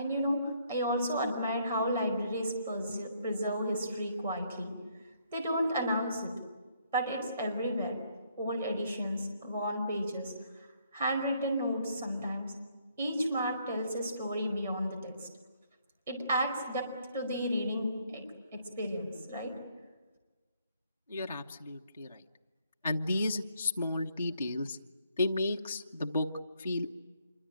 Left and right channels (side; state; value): both; inverted; correlation -0.69